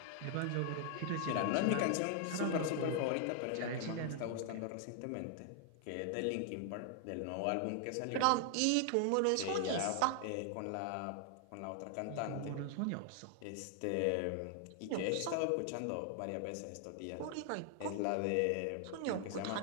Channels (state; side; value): different; both; correlation 0.00